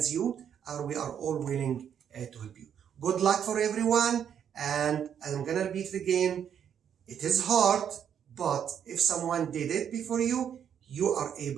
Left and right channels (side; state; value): left; quieter; 8.6 dB